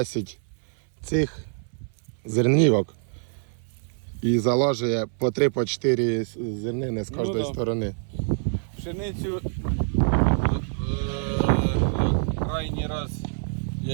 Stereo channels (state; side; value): silent; left; 58 dB below the other